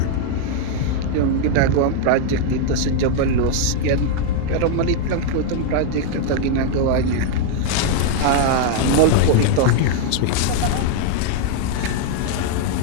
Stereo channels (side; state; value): both; different; correlation 0.00